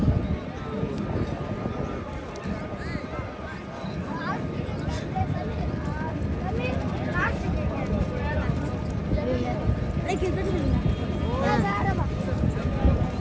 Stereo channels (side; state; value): both; identical; correlation 1.00